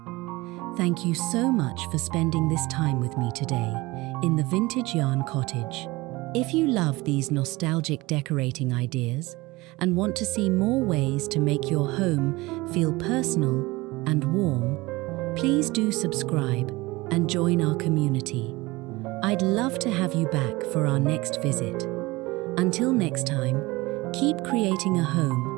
Thank you so much for spending this time with me today in the Vintage Yarn Cottage. If you love these nostalgic decorating ideas and want to see more ways to make your home feel personal and warm, please do subscribe and join our community. I'd love to have you back for our next visit. Until next time, keep creating a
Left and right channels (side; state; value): left; quieter; 21.5 dB